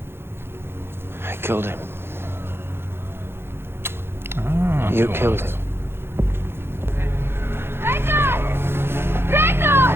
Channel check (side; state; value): left; late; 0.11 ms